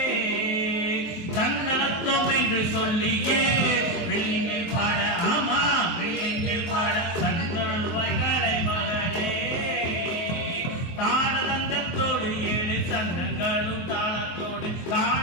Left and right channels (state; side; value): late; right; 23 ms